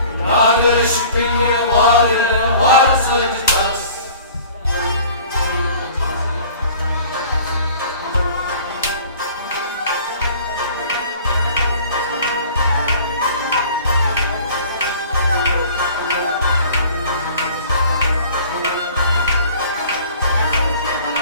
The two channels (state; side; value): inverted; both; correlation -0.47